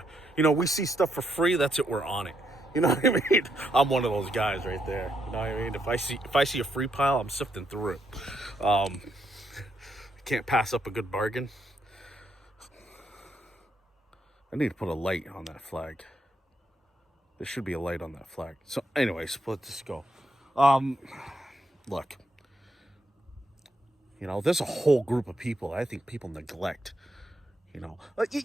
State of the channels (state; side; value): normal; both; correlation 0.78